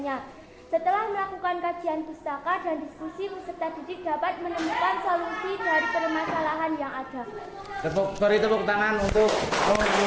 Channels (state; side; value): identical; both; correlation 1.00